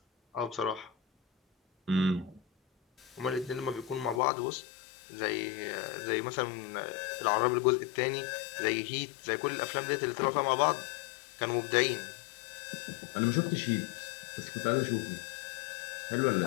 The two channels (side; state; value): right; drops out; at 4.2 s